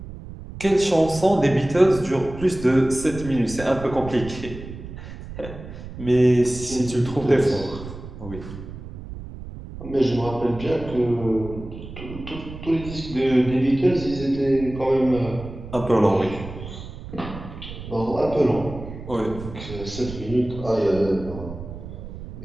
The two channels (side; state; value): right; noise; rumble, 12 dB below the sound